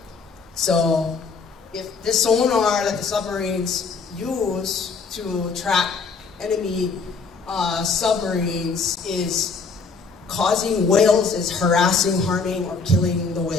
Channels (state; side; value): quieter; right; 4.7 dB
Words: So if this sonar that the submarines use to track enemy submarines is causing whales, is harassing, harming, or killing the